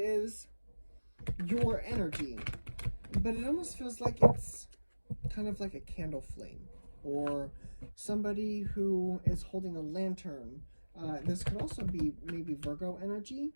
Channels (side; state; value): both; inverted; correlation -1.00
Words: is your energy, but it almost feels like it's kind of like a candle flame, or somebody who is holding a lantern. This could also be maybe Virgo energy